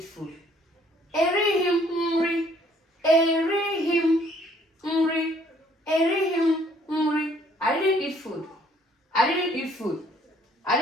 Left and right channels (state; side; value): normal; both; correlation 0.62